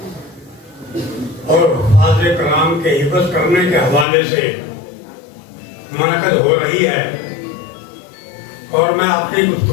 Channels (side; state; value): right; drops out; at 4.0 s